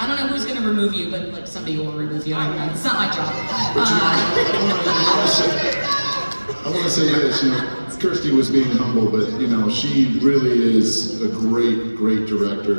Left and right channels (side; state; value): both; inverted; correlation -1.00